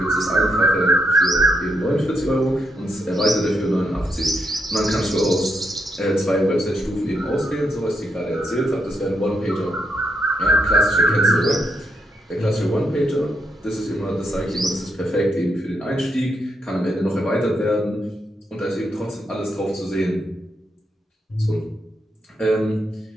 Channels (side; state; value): both; normal; correlation 0.79